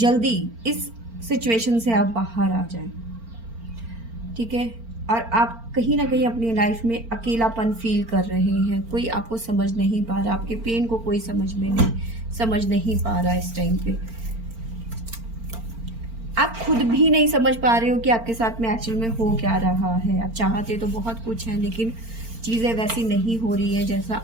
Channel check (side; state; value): left; late; 4.4 ms